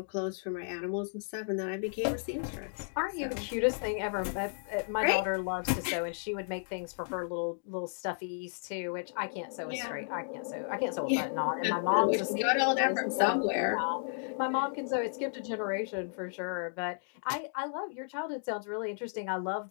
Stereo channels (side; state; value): right; silent; digital silence